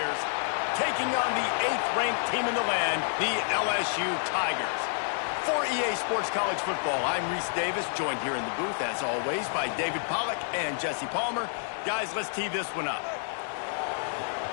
taking on the 8th-ranked team in the land, the LSU Tigers. For EA Sports College Football, I'm Reese Davis, joined here in the booth, as always, by David Pollack and Jesse Palmer. Guys, let's tee this one up.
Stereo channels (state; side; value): silent; right; digital silence